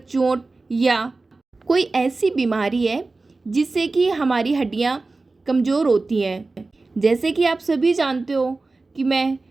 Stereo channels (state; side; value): quieter; left; 3.5 dB